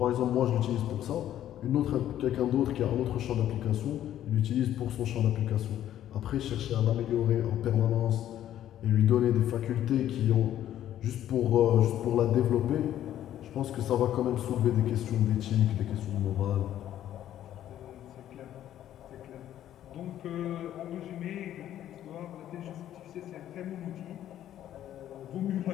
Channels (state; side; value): quieter; right; 11.8 dB